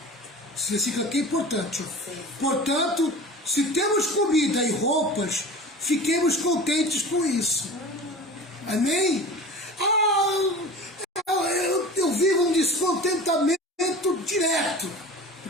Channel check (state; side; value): normal; both; correlation 0.36